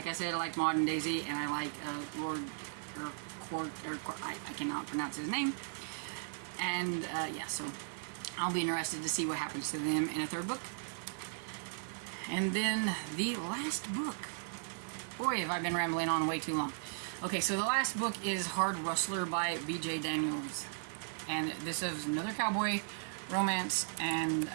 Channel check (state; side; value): silent; left; digital silence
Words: I said, I like Maud and Daisy, and I like I cannot pronounce his name. And yeah, so I'll be interested to see what happens to them in a 3rd book. And then the last book. Boy, have I been rambling on way too long. Okay, so the last book is Hard Rustler by B.J. Daniels. And this is another cowboy romance, and